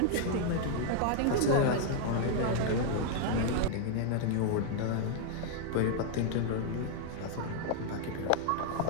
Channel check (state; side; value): different; both; correlation 0.00